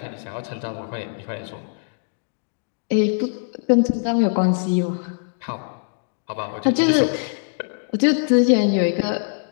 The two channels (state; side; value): silent; right; digital silence